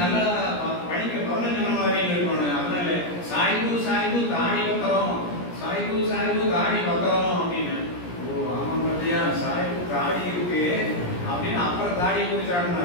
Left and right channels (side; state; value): right; late; 17 ms